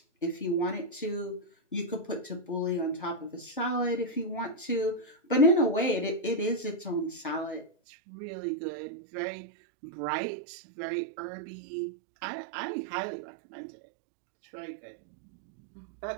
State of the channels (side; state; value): left; drops out; at 7.7 s